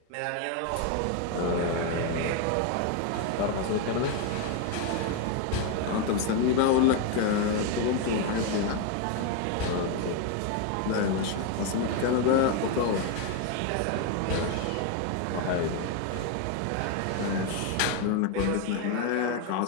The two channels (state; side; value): different; both; correlation 0.01